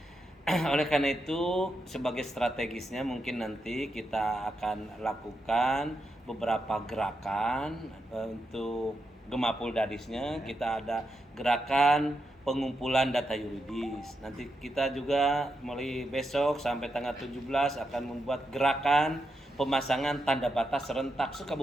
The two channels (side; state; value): both; normal; correlation 0.85